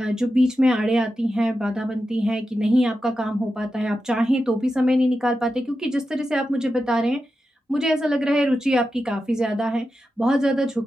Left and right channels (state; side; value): normal; both; correlation 0.90